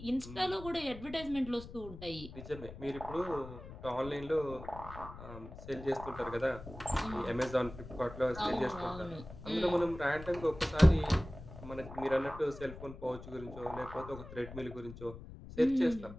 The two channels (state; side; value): noise; left; rumble, 14 dB below the sound